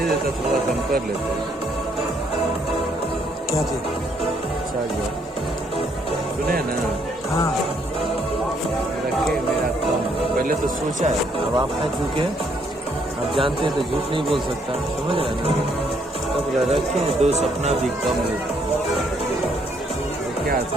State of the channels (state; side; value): normal; both; correlation 0.70